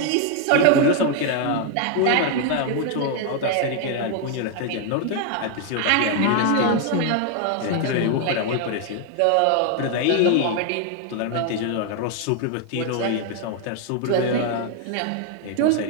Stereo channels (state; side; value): different; both; correlation 0.01